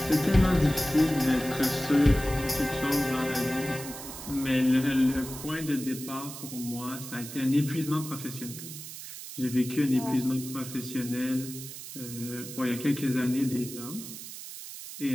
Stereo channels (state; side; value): noise; right; hiss, 11 dB below the sound